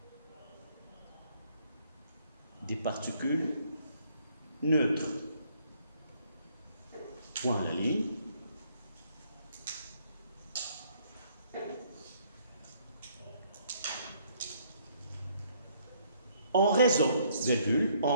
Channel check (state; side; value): inverted; both; correlation -0.66